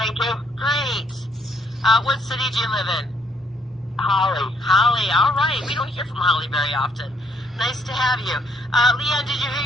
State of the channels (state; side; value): normal; both; correlation 0.69